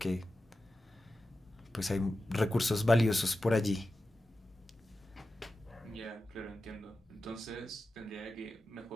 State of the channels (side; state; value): both; normal; correlation 0.92